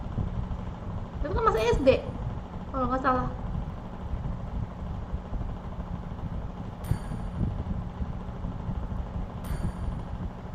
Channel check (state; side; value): identical; both; correlation 1.00